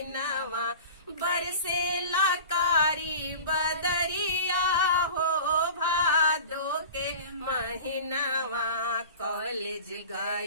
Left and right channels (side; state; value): both; inverted; correlation -0.38